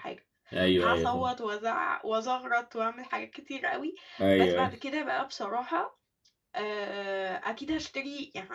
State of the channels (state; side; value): identical; both; correlation 1.00